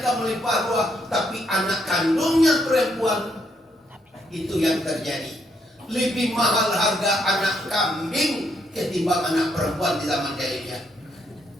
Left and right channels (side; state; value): both; normal; correlation 0.75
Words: kamu melimpah ruah. Tapi anak kandungnya perempuan, itu yang terjadi. Lebih mahal harga anak kambing ketimbang anak perempuan di zaman jahiliyah.